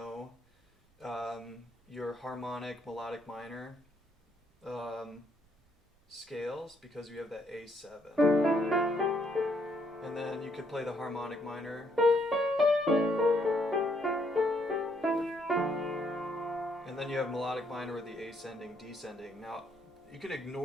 your harmonic, melodic minor scales because you have that A7. And then you could play the harmonic minor. And then you have melodic minor with the ascending, descending. Now, you can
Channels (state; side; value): normal; both; correlation 0.72